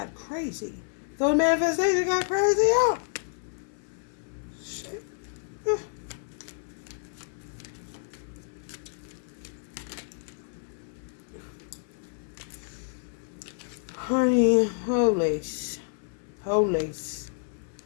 crazy. So the manifestation got crazy out. Shit. Honey, holy.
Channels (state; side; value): silent; right; 58 dB below the other